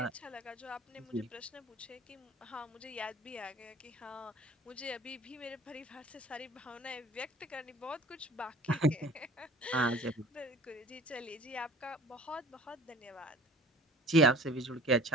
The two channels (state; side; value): normal; both; correlation 0.48